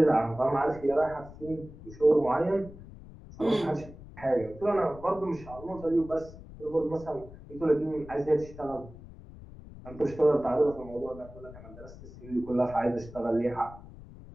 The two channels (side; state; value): left; noise; rumble, 17 dB below the sound